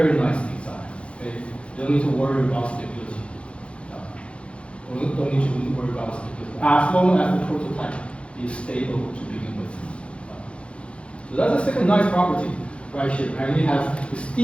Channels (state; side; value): late; right; 0.060 ms